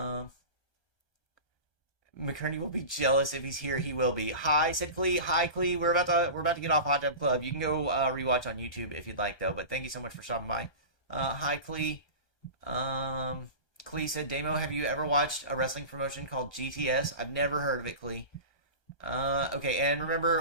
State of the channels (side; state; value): right; late; 1.2 ms